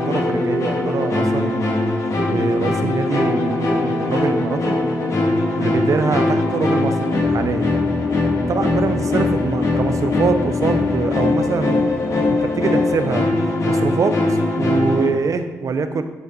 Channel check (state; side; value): normal; both; correlation 0.79